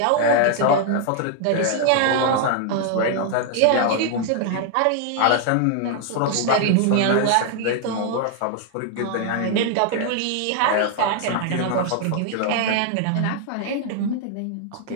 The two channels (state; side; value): different; both; correlation 0.00